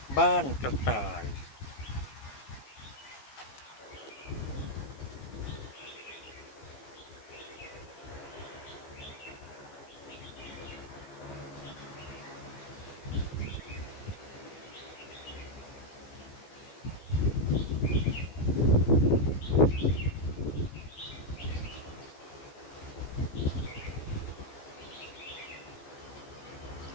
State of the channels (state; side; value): late; right; 15 ms